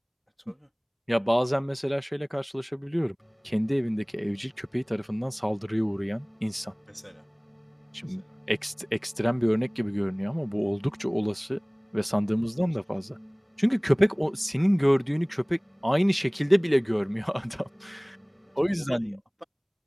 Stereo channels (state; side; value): identical; both; correlation 1.00